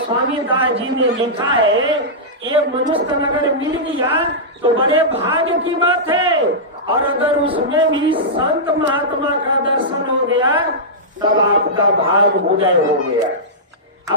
दास जी ने लिखा है, ये मनुष्य नगर मिल गया तो बड़े भाग्य की बात है, और अगर उसमें भी संत महात्मा का दर्शन हो गया तब आपका भाग उदय हो गया।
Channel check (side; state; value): both; normal; correlation -0.13